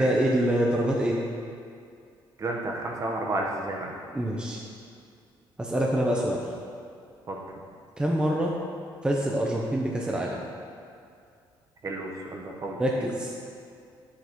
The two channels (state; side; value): normal; both; correlation 0.78